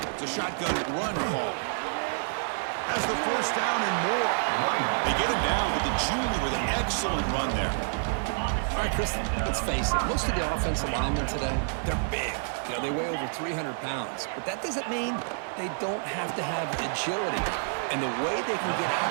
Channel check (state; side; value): silent; left; 59 dB below the other